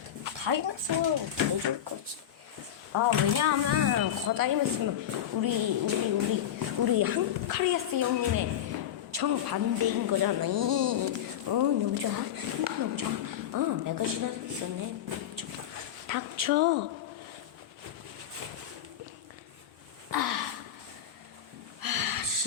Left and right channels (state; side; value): quieter; right; 10.3 dB